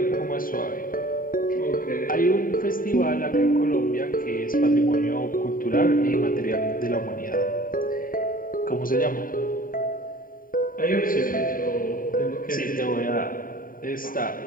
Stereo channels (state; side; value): late; right; 0.41 ms